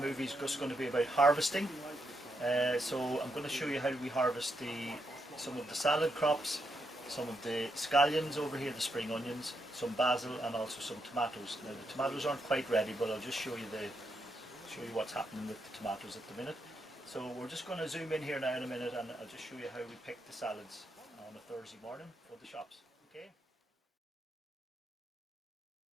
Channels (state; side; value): normal; both; correlation 0.81